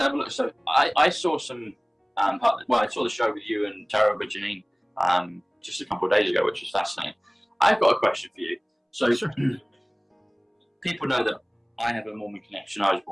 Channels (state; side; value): identical; both; correlation 1.00